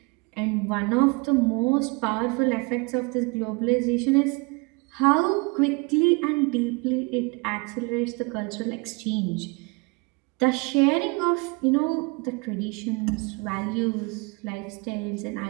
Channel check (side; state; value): left; quieter; 29.0 dB